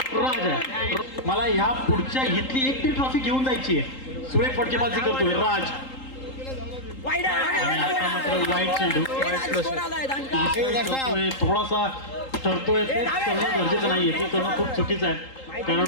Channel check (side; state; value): right; late; 3.8 ms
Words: मला ह्या पुढच्या इथली एक ती ट्रॉफी घेऊन जायची आहे. सुरेख फटकेबाजी करतोय राज. वाईट चेंडू थोडासा ठरतोय. ते करणं गरजेचं नाहीये. ते करणं खूप चुकीचं आहे.